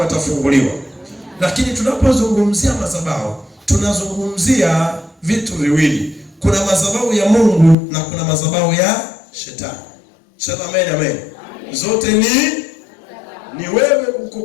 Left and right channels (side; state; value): right; drops out; at 7.8 s